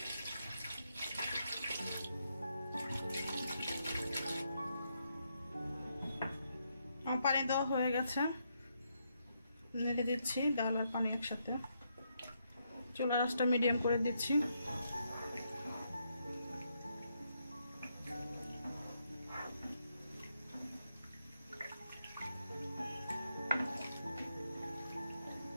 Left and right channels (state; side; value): inverted; both; correlation -0.79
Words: আমার পানি দেওয়া হয়ে গেছে, নেড়ে দিচ্ছি ডাল আর পানি একসাথে। চুলার আঁচটা মিডিয়াম করে দিচ্ছি।